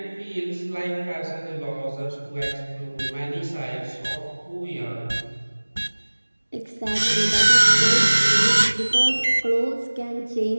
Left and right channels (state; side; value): inverted; both; correlation -1.00